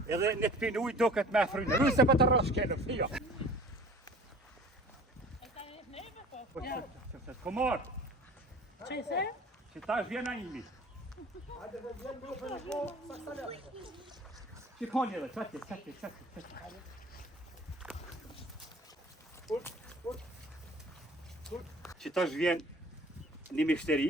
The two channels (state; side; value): normal; both; correlation 0.46